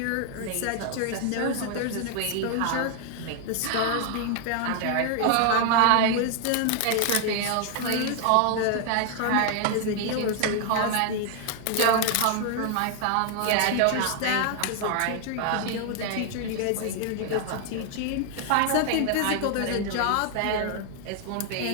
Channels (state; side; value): different; both; correlation 0.00